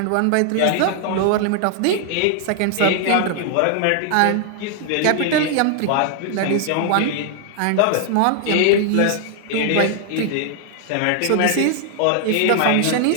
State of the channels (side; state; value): both; different; correlation 0.00